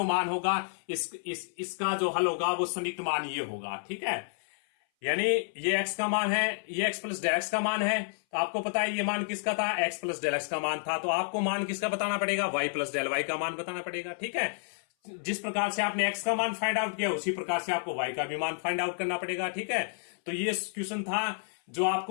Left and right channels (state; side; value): silent; right; 57 dB below the other